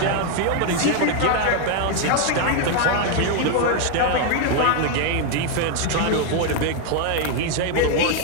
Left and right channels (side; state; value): both; different; correlation 0.01